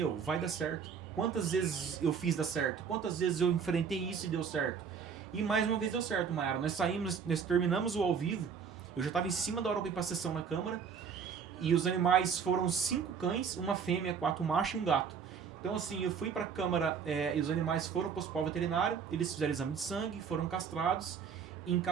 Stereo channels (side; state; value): left; quieter; 6.6 dB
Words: vai dar certo. Quantas vezes eu fiz dar certo? Quantas vezes eu enfrentei isso e deu certo? E mais uma vez deu certo, Mayara. Nós terminamos o ao vivo. Eu já estava em cima da hora para ir pra sessão na câmara. E os animais foram 5 cães, uma fêmea, 4 machos e um gato. Então assim, eu fui pra câmara e os animais foram pro hospital veterinário. Eles fizeram exame de sangue, foram castrados e